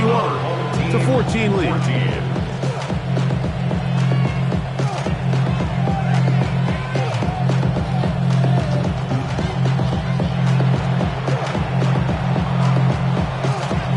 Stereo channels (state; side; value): identical; both; correlation 1.00